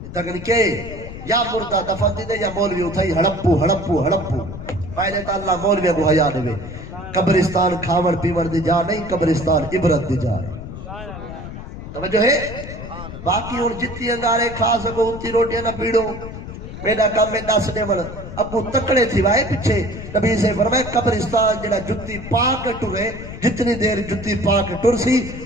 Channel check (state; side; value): noise; left; rumble, 11 dB below the sound